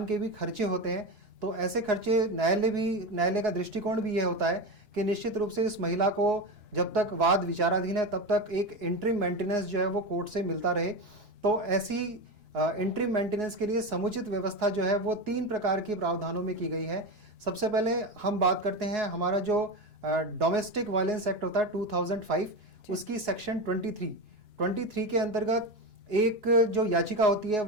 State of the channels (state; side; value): late; left; 2.9 ms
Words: के भी खर्चे होते हैं। तो ऐसे खर्चे न्यायालय का दृष्टिकोण भी यह होता है कि निश्चित रूप से इस महिला को जब तक वाद विचाराधीन है तब तक एक इंटरिम मेंटेनेंस जो है वो कोर्ट से मिलता रहे। तो ऐसी इंटरिम मेंटेनेंस के लिए समुचित व्यवस्था जो है वो 3 प्रकार की प्रावधानों में की गई है। सबसे पहले हम बात करते हैं हमारा जो डोमेस्टिक वायलेंस एक्ट होता है 2005, उसकी सेक्शन 23 के अंतर्गत एक जो याचिका होती है